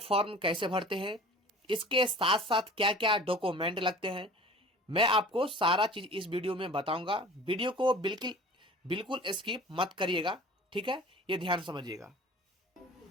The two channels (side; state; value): both; normal; correlation 0.43